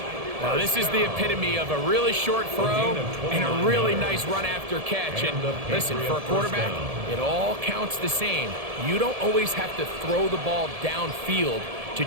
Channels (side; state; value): left; late; 1.7 ms